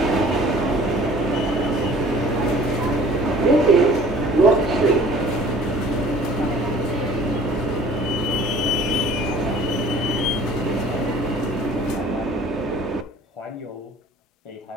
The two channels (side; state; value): both; normal; correlation 0.50